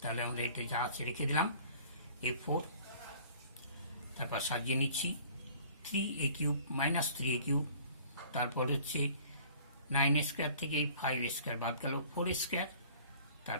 আমরা এটা যা আছে রেখে দিলাম a4, তারপর সাজিয়ে নিচ্ছি 3a cube minus 3a cube, তারপর হচ্ছে 9a স্কোয়ার থেকে 5a স্কোয়ার বাদ গেল 4a স্কোয়ার,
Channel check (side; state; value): both; inverted; correlation -0.50